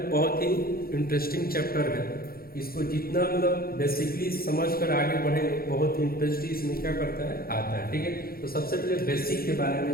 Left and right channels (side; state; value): right; late; 0.43 ms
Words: बहुत ही इंटरेस्टिंग चैप्टर है। इसको जितना मतलब बेसिकली समझ कर आगे बढ़े बहुत इंटरेस्ट इसमें क्या करता है आता है। ठीक है, तो सबसे पहले बेसिक के बारे में